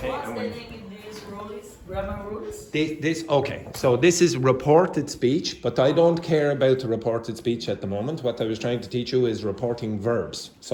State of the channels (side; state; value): both; identical; correlation 1.00